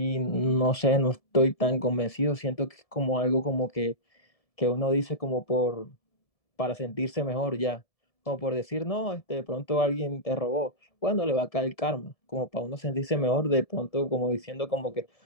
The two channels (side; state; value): right; late; 1.7 ms